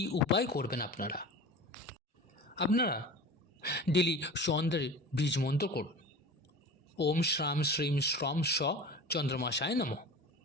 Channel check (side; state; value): both; normal; correlation 0.35